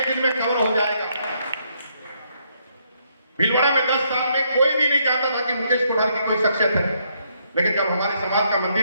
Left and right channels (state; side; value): inverted; both; correlation -0.73